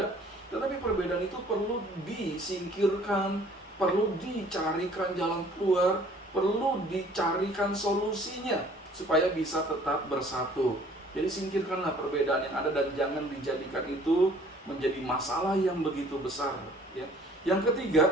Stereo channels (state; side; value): normal; both; correlation 0.55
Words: tetapi perbedaan itu perlu disingkirkan, perlu dicarikan jalan keluar, perlu dicarikan solusinya, supaya bisa tetap bersatu. Jadi singkirkanlah perbedaan yang ada dan jangan dijadikan itu menjadi masalah yang begitu besar. Yang